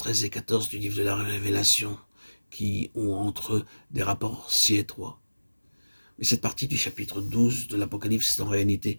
et 14 du livre de la Révélation qui ont entre eux des rapports si étroits. Mais cette partie du chapitre 12 de l'Apocalypse est en réalité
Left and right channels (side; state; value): both; inverted; correlation -1.00